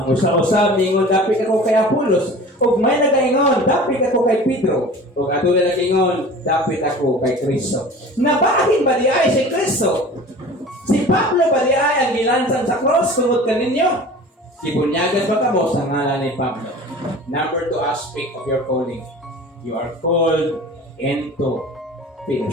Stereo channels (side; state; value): both; normal; correlation 0.40